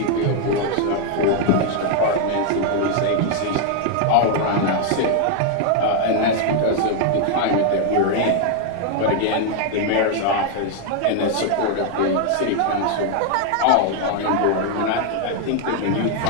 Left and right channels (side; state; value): both; different; correlation 0.00